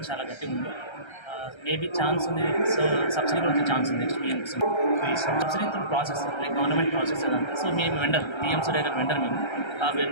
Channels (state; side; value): late; right; 1.3 ms